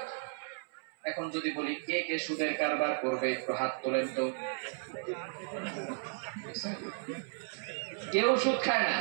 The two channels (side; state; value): left; silent; 55 dB below the other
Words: এখন যদি বলি কে কে সুদের কারবার করবে, একটু হাত তোলেন তো। কেউ সুদ খায় না।